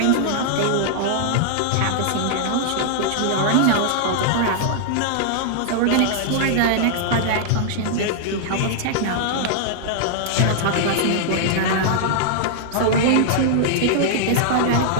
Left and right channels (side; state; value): both; different; correlation -0.01